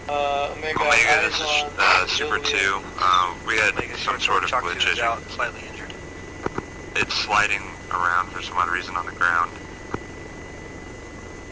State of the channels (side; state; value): both; identical; correlation 1.00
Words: Omega, Omega, this is on Super Zulu. 2. We had some sort of glitch issue. Slightly injured. It's sliding around for some odd reason on the ground.